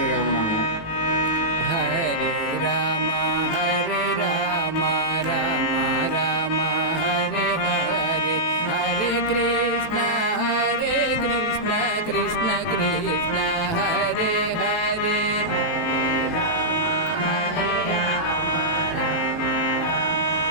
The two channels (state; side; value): late; right; 18 ms